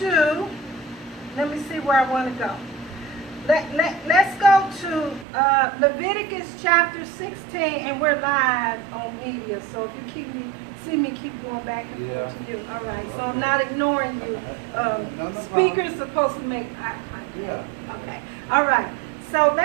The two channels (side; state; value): left; drops out; at 5.2 s